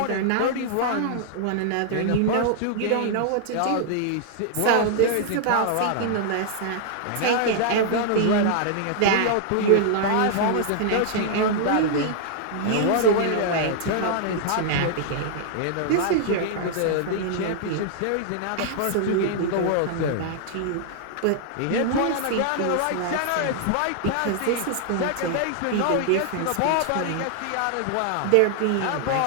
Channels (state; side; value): different; both; correlation -0.01